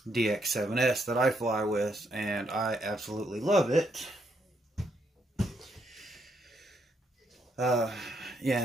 DX7S that I fly with, and I absolutely love it. Yeah,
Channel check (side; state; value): both; normal; correlation 0.76